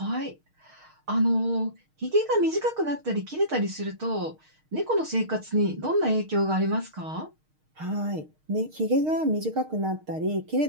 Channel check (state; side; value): late; left; 6.5 ms